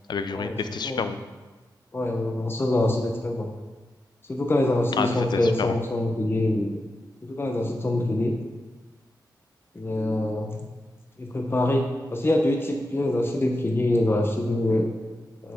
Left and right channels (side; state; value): both; normal; correlation 0.88